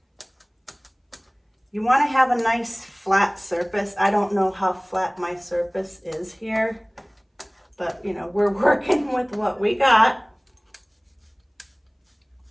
You want to have a nice flat surface. I don't know how flat my surface is here, but we're working with what we got.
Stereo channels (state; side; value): identical; both; correlation 1.00